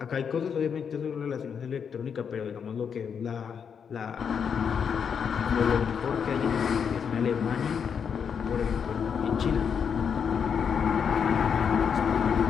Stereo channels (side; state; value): right; quieter; 7.0 dB